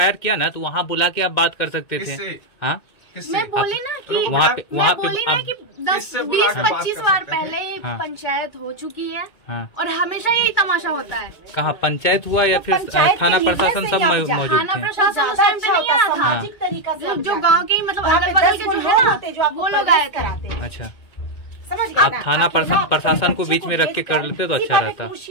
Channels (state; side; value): late; right; 2.2 ms